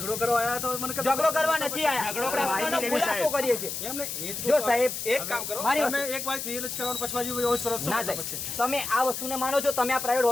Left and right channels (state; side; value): noise; left; hiss, 5 dB below the sound